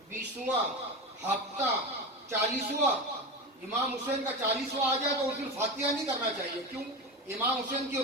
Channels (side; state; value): both; normal; correlation 0.23